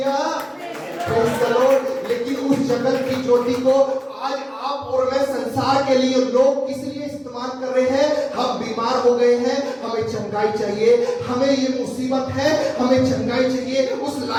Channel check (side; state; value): both; identical; correlation 1.00